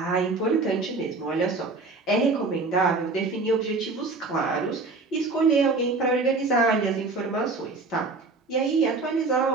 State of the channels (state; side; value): quieter; left; 3.7 dB